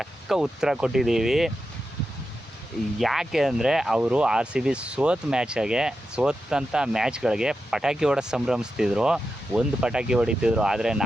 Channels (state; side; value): normal; both; correlation 0.89